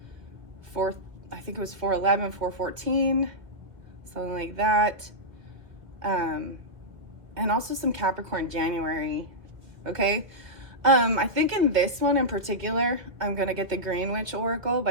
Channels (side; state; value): left; late; 1.7 ms